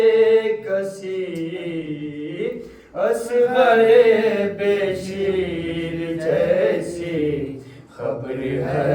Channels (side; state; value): both; identical; correlation 1.00